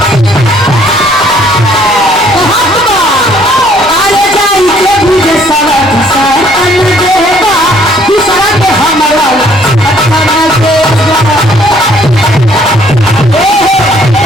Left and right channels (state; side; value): normal; both; correlation 0.62